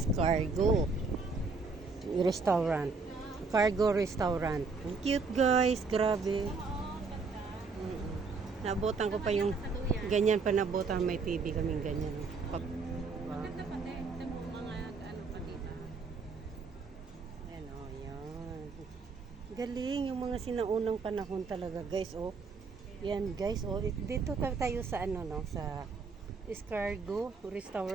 Restaurant. Cargo Restaurant. Ang cute guys, grabe. Nabotan ko pa yung ganyan pa nabotan, may TV kaming ganyan. Maganda pa din. Ito mo mga ano pa dito. Ayan o, yan. Galing yung mga sinaunang panahon talaga guys, oh. Yan guys, oh. Dito tayo sa ano no, sa Escargo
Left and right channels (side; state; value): left; quieter; 4.5 dB